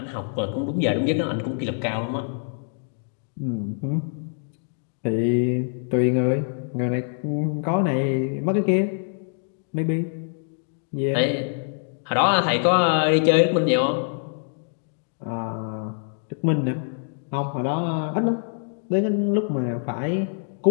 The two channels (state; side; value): silent; right; 62 dB below the other